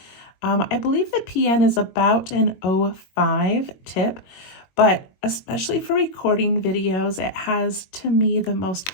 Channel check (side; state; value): right; late; 21 ms